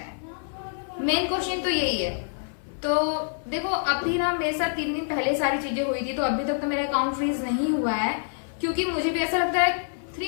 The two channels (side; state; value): right; silent; 57 dB below the other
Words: है, मेन क्वेश्चन तो यही है। तो देखो अभी ना मेरे साथ 3 दिन पहले सारी चीजें हुई थी, तो अभी तक तो मेरा अकाउंट फ्रीज नहीं हुआ है, क्योंकि मुझे भी ऐसा लगता है